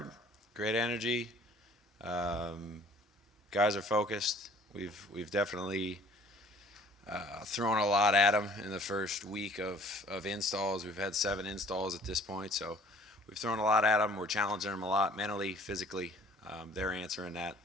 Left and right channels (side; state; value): both; normal; correlation 0.54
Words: great energy. Um, Guys are focused. We've definitely thrown a lot at them in the first week of installs. We've had 7 installs at this point, so we've thrown a lot at them. We're challenging them a lot mentally, physically. They're answering